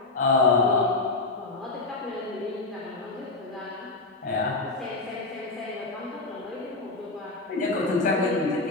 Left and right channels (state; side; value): quieter; right; 3.3 dB